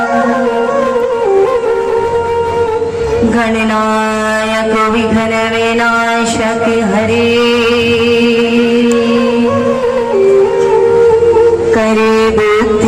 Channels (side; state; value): both; identical; correlation 1.00